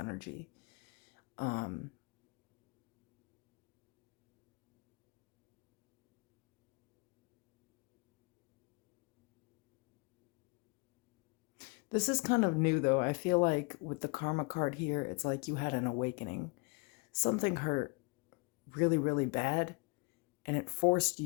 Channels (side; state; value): right; quieter; 30.6 dB